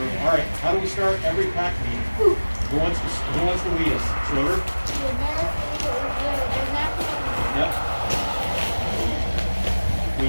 All right, how do we start every pack meeting? Who wants to lead us? Schroder? Yep.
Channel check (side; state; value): both; inverted; correlation -1.00